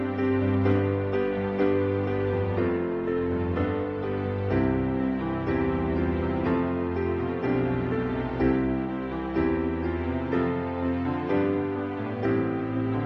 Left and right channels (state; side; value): identical; both; correlation 1.00